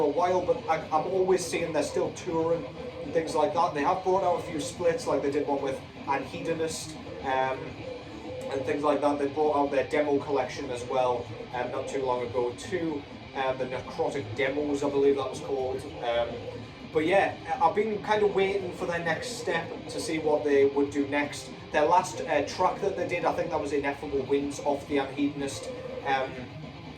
a while, but I'm always seeing they're still touring and things like that. They have brought out a few splits, like they did one with Antichrist and things like that. They brought out their demo collection as well not too long ago too. The Necrotic Demos, I believe that was called. But yeah, I've been kind of waiting for their next step to see what they would do next. Their last track that they did, I think that was Ineffable Winds off the Antichrist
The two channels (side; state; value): both; identical; correlation 1.00